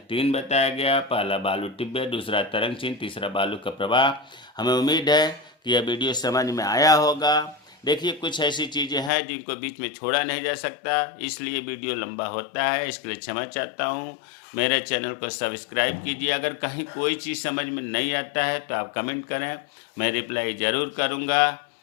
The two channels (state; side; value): drops out; right; at 9.1 s